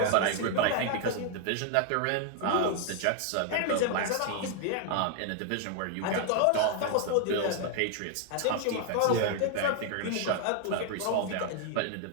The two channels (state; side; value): different; both; correlation 0.00